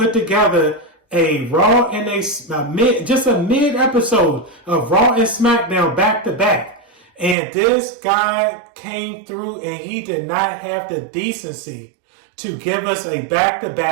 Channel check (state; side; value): drops out; left; at 7.4 s